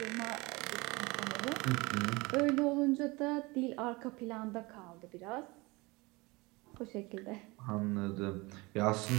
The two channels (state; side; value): quieter; left; 24.3 dB